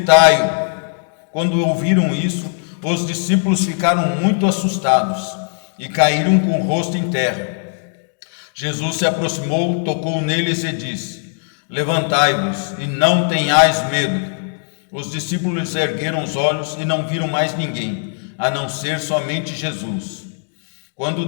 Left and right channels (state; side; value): silent; right; digital silence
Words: Quando ouviram isso, os discípulos ficaram muito assustados e caíram com o rosto em terra. Jesus se aproximou, tocou neles e disse: Levantai-vos e não tenhais medo. Os discípulos ergueram os olhos e não viram mais ninguém, a não ser somente Jesus. Quando